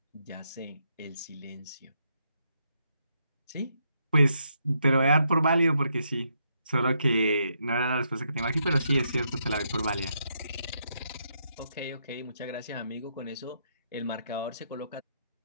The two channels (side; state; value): both; inverted; correlation -0.78